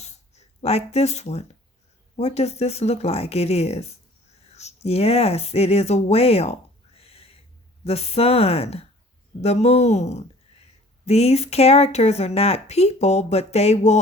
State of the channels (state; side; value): normal; both; correlation 0.50